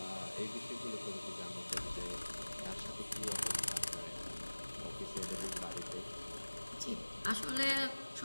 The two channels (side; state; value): both; inverted; correlation -1.00